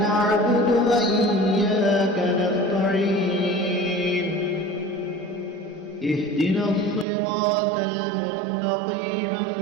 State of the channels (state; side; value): drops out; left; at 7.1 s